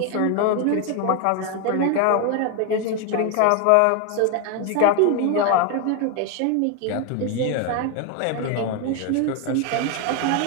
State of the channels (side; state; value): both; different; correlation 0.01